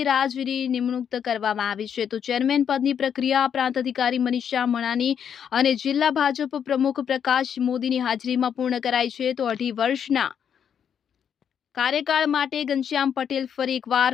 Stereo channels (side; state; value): right; quieter; 8.2 dB